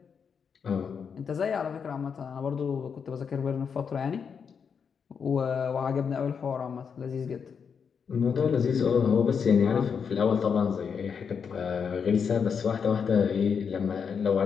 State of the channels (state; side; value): quieter; right; 6.5 dB